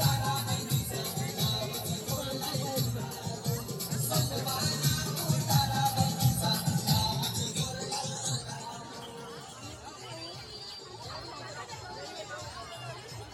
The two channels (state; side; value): identical; both; correlation 1.00